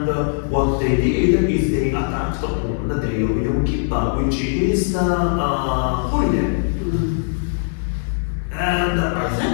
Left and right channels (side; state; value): right; silent; 66 dB below the other